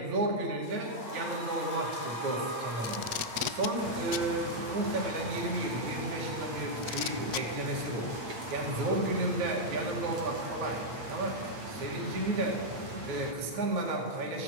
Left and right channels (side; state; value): left; late; 8.3 ms